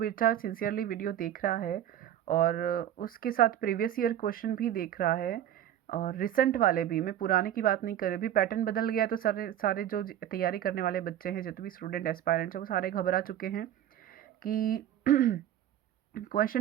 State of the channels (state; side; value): quieter; left; 11.3 dB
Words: सिंसियरली वीडियो देख रहा है और उसके साथ प्रीवियस ईयर क्वेश्चन भी देख रहा है और रिसेंट वाले भी, मैं पुराने की बात नहीं कर रही, भी पैटर्न बदल गया, तो सारे जो तैयारी करने वाले बच्चे हैं, जितने भी स्टूडेंट एस्पायरेंट्स हैं, वो सारे घबरा चुके हैं कि